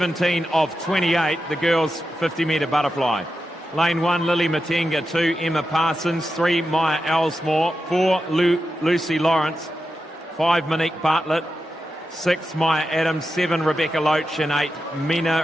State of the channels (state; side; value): normal; both; correlation 0.89